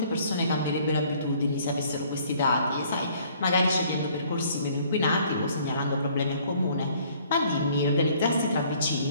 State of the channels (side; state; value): both; inverted; correlation -0.59